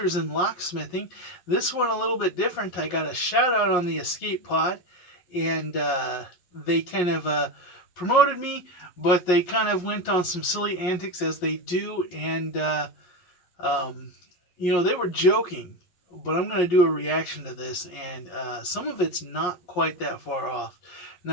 in Locksmithing. This one a little bit different. I got a shout out on the escape pod, and they kind of promoted me, but they kind of went on some silly antics as they do, and they were joking. But I'm going to do a reaction to this, and some of it's not quite that far off.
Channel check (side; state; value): right; late; 11 ms